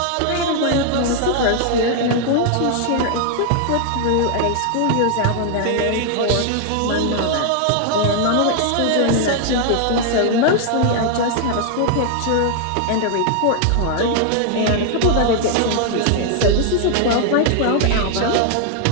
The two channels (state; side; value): different; both; correlation 0.00